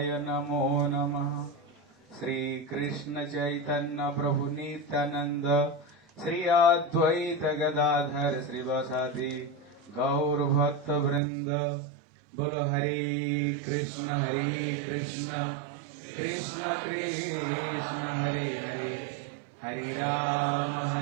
नमो नमः। श्री कृष्ण चैतन्य प्रभु नित्यानंद श्री अद्वैत गदाधर श्रीवासादि गौर भक्त वृंद बोलो हरे Krishna Krishna Krishna Hare Hare Hare Ram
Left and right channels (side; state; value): left; drops out; at 11.2 s